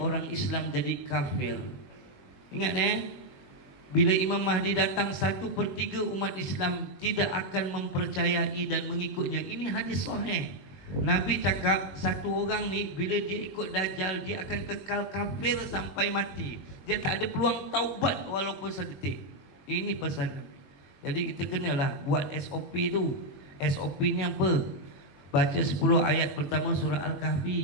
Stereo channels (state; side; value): late; right; 21 ms